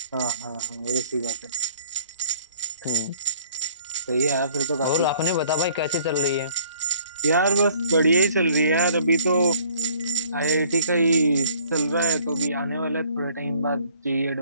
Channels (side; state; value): both; inverted; correlation -0.58